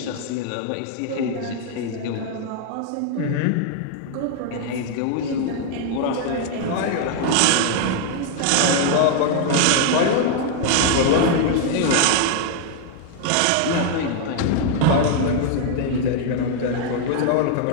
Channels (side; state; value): both; different; correlation 0.00